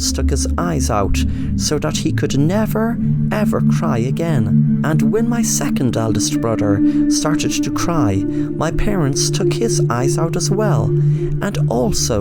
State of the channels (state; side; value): identical; both; correlation 1.00